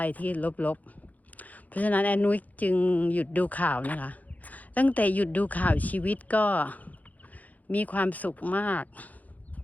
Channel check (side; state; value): right; late; 0.078 ms